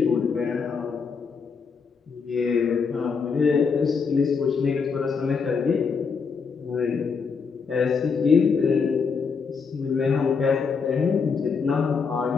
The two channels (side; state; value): right; quieter; 5.5 dB